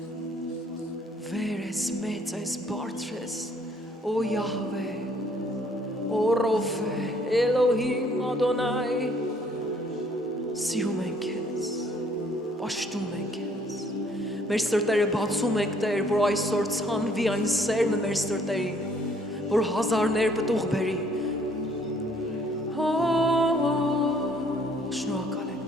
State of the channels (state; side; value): normal; both; correlation 0.62